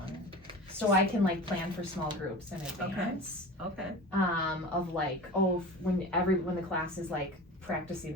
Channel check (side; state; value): both; normal; correlation 0.34